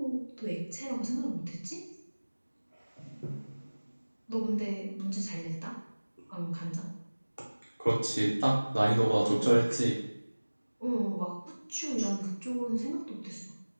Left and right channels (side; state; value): both; inverted; correlation -1.00